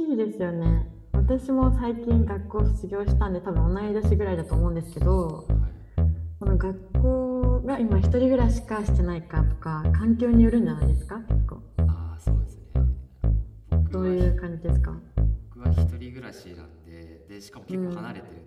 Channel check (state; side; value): identical; both; correlation 1.00